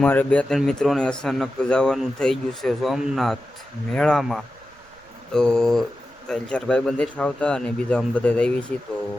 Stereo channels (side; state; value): right; noise; rumble, 29 dB below the sound